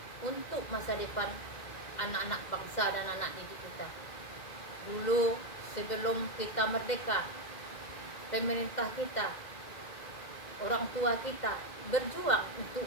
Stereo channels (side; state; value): right; late; 2.1 ms